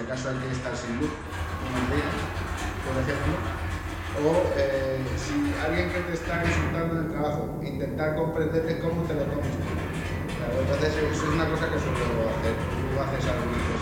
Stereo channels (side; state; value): both; identical; correlation 1.00